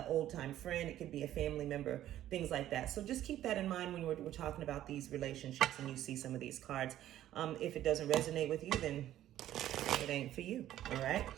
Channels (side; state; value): left; quieter; 12.7 dB